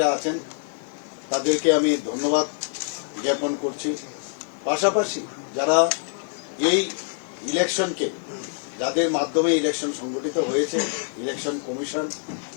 আছেন তাদেরকে আমি ধন্যবাদ জ্ঞাপন করছি। পাশাপাশি যারা এই ইলেকশনকে যাদের মাধ্যমে ইলেকশন সংগঠিত হয়েছে, ইলেকশন কমিশন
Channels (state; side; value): silent; right; 62 dB below the other